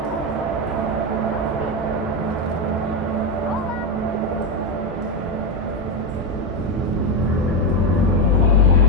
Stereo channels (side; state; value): both; normal; correlation 0.09